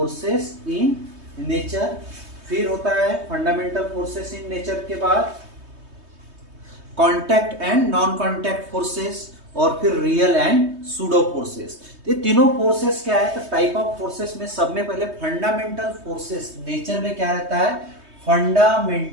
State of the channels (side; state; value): left; late; 3.2 ms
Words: in nature. फिर होता है फंडामेंटल फोर्सेस इन नेचर के बाद contact and non contact forces, और फिर रियल एंड सूडो फोर्सेस। ये तीनों फोर्सेस क्या है? तो टाइप ऑफ फोर्सेस में सब में पहले फंडामेंटल फोर्सेस, नेचर में क्या रहता है?